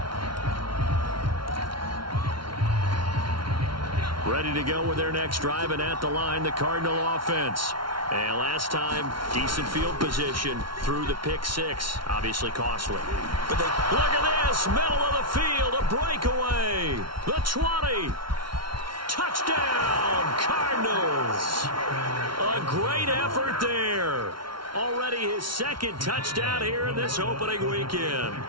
Ready to go with their next drive, and at the line, the Cardinal offense. And last time, decent field position through the pick 6. Obviously costly. But look at this, middle of the field, a breakaway. The 20. Touchdown, Cardinals. A great effort there. Already his 2nd touchdown here in this opening weekend.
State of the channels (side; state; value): left; late; 0.73 ms